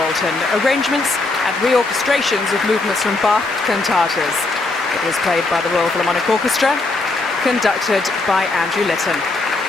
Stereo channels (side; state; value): right; quieter; 3.3 dB